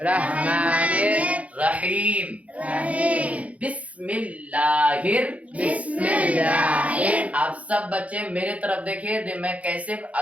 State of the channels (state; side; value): late; left; 0.067 ms